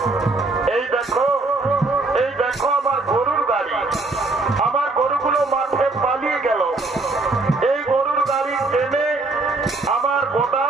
এই দেখো, এই দেখো আমার গরুর গাড়ি। আমার গরুগুলো মাঠে পালিয়ে গেল। এই গরুর গাড়ি টেনে আমার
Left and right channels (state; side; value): quieter; left; 3.3 dB